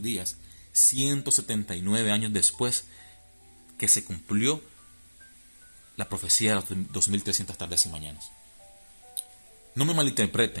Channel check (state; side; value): inverted; both; correlation -1.00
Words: días, 179 años después que se cumplió la profecía de las 2300 tardes y mañanas. No me